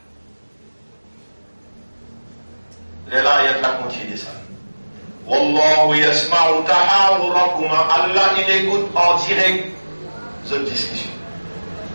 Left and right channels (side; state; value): both; inverted; correlation -1.00